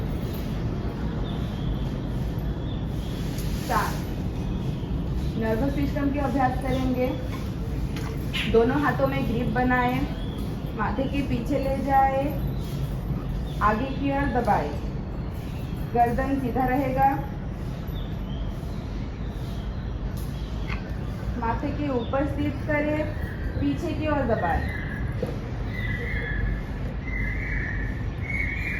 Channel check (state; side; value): identical; both; correlation 1.00